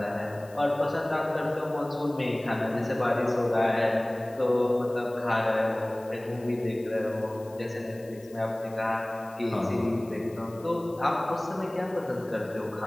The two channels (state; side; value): noise; left; hiss, 25 dB below the sound